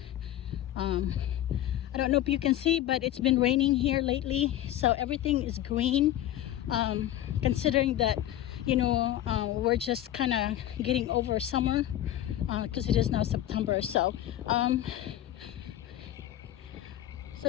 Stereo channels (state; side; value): quieter; right; 12.9 dB